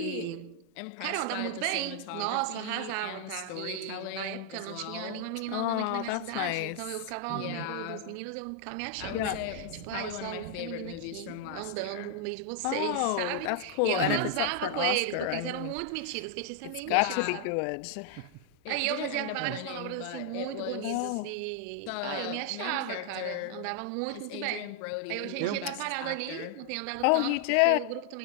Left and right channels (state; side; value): different; both; correlation 0.00